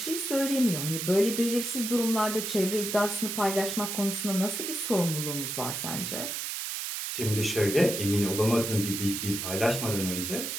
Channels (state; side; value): noise; right; hiss, 4 dB below the sound